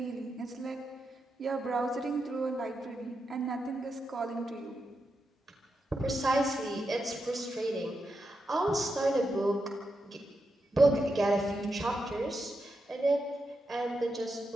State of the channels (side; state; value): both; normal; correlation 0.86